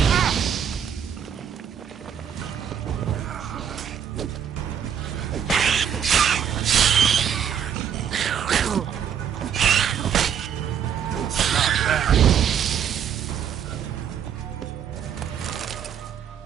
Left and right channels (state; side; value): quieter; left; 8.5 dB